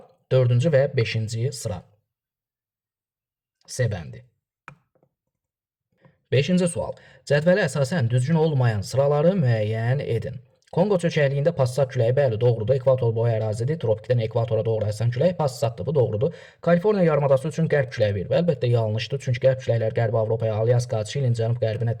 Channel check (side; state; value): both; identical; correlation 1.00